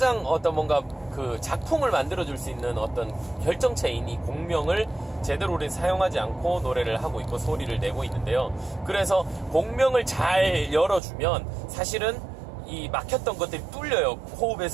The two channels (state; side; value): drops out; left; at 11.0 s